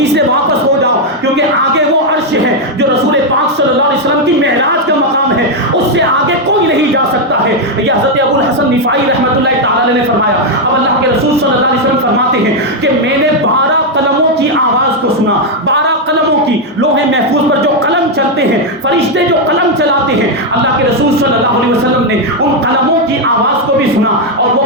سے واپس ہو جاؤ، کیونکہ آگے وہ عرش ہے جو رسول پاک صلی اللہ علیہ وسلم کی معراج کا مقام ہے، اس سے آگے کوئی نہیں جا سکتا ہے۔ یہ حضرت ابو الحسن رفاعی رحمۃ اللہ تعالی نے فرمایا۔ اب اللہ کے رسول صلی اللہ علیہ وسلم فرماتے ہیں کہ میں نے 12 قلموں کی آواز کو سنا، 12 قلموں کی، لوح محفوظ پر جو قلم چلتے ہیں، فرشتے جو قلم چلاتے ہیں، اللہ کے رسول صلی اللہ علیہ وسلم نے ان قلموں کی آواز کو بھی سنا، اور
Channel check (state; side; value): normal; both; correlation 0.02